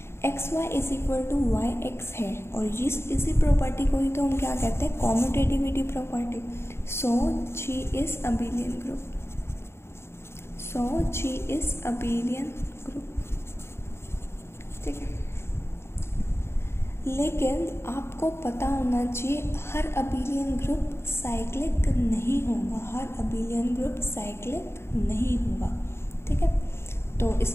X y is equal to y x है, और इसी प्रॉपर्टी को ही तो हम क्या कहते हैं, commutativity property. So G is abelian group, so G is abelian group, ठीक है। लेकिन आपको पता होना चाहिए हर अबेलियन ग्रुप साइक्लिक नहीं होगा, हर अबेलियन ग्रुप साइक्लिक नहीं होगा, ठीक है। तो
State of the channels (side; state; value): right; late; 0.12 ms